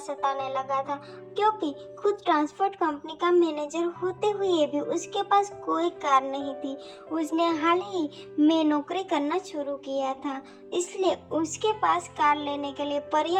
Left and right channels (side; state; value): both; identical; correlation 1.00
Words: लगा था, क्योंकि खुद ट्रांसपोर्ट कंपनी का मैनेजर होते हुए भी उसके पास कोई कार नहीं थी। उसने हाल ही में नौकरी करना शुरू किया था, इसलिए उसके पास कार लेने के लिए